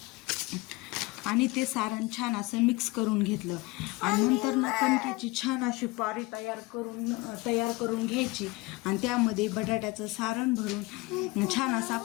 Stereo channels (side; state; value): right; quieter; 22.8 dB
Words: आणि ते सारण छान असं मिक्स करून घेतलं आणि नंतर कणकेची छान अशी पारी तयार करून घ्यायची आणि त्यामध्ये बटाट्याचं सारण भरून छान असा